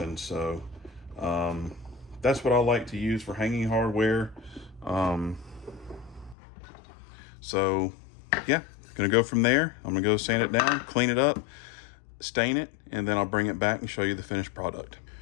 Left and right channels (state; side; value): drops out; right; at 6.4 s